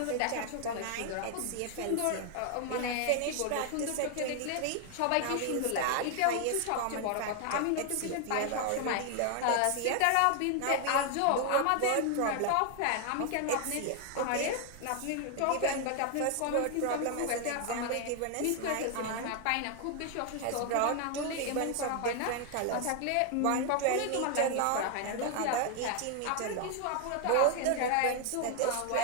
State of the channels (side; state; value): both; different; correlation 0.00